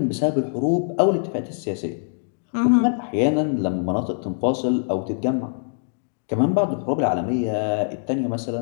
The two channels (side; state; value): right; silent; digital silence